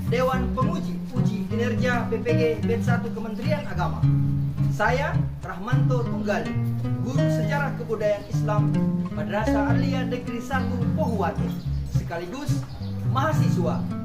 Dewan Penguji Uji Kinerja PPG Bet 1 Kementerian Agama, saya Rahmanto Tunggali, Guru Sejarah Kebudayaan Islam Madrasah Aliyah Negeri 1 Pohuwatu, sekaligus mahasiswa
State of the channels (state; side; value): identical; both; correlation 1.00